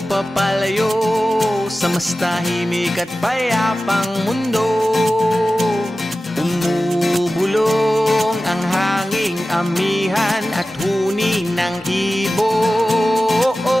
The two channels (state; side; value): normal; both; correlation 0.95